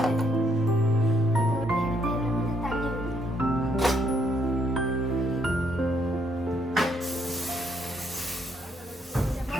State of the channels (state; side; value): normal; both; correlation 0.72